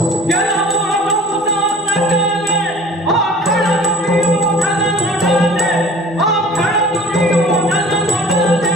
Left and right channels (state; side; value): normal; both; correlation 0.46